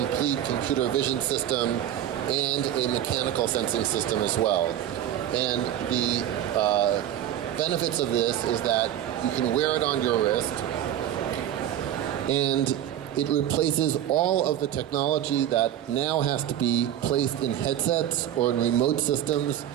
computer vision system and a mechanical sensing system as well. And the benefits of this is that you can wear it on your wrist, and it replaces all of the technology that now has to be placed in headsets or in remote systems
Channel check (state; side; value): quieter; left; 11.3 dB